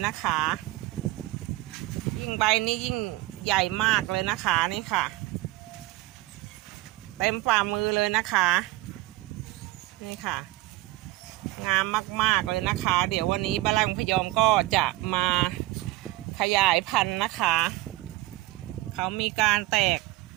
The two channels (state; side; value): quieter; left; 18.7 dB